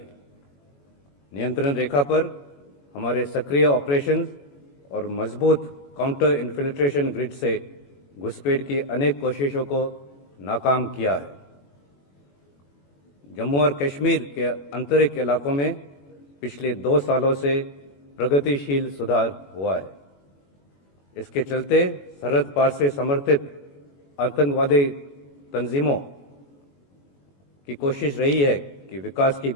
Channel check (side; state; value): right; late; 21 ms